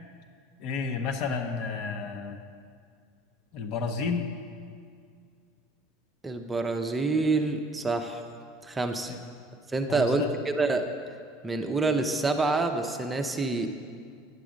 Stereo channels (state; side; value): normal; both; correlation 0.59